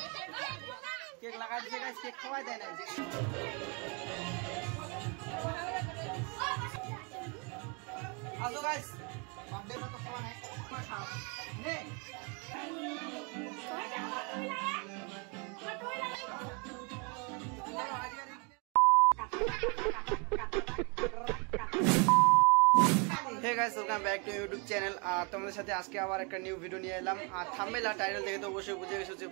কেক লাগাই দিছে গাইস, কেক খাওয়াই দেয় না। আসো গাইস, বার্থডে তো খাওয়া নাই, খাও নে। Hey guys welcome back to YouTube channel. তোমাদের সাথে আজকে আবার একটা নিউ ভিডিও নিয়ে এলাম। আর থাম্বনেল আর টাইটেল দেখে তো অবশ্যই বুঝে গেছো যে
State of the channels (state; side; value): quieter; left; 33.4 dB